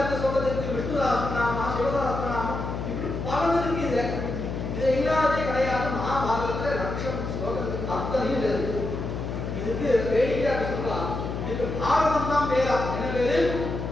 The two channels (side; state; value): left; noise; hum, 5 dB below the sound